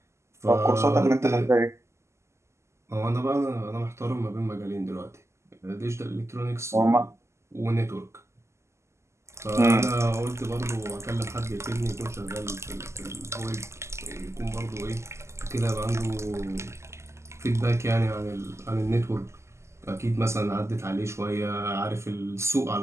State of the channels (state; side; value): late; left; 0.13 ms